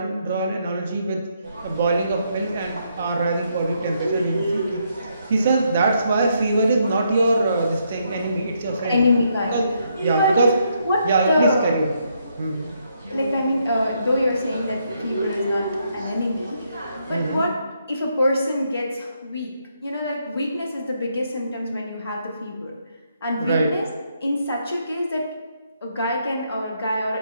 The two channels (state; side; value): inverted; both; correlation -0.76